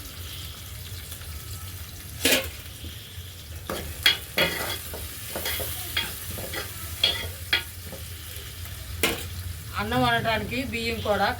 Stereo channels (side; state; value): both; identical; correlation 1.00